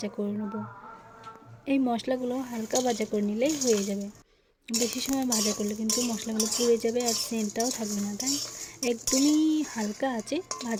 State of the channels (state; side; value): identical; both; correlation 1.00